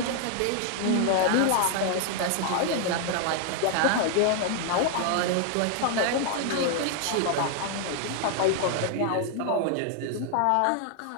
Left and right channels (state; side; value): different; both; correlation 0.00